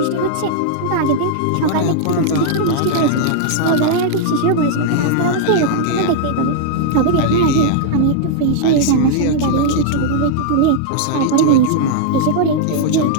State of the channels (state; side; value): different; both; correlation -0.01